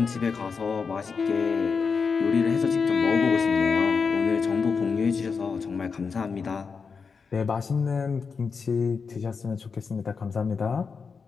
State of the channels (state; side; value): quieter; right; 5.4 dB